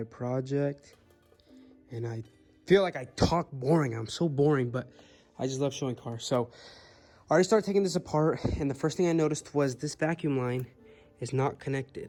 project, and I feel like I talk boring. I'm so boring, but I just love showing cars. So I already started taking this apart, and the first thing I noticed was this vacuum line is not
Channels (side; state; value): both; identical; correlation 1.00